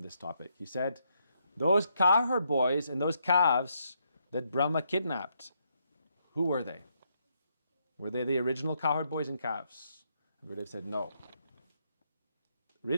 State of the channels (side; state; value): both; inverted; correlation -0.76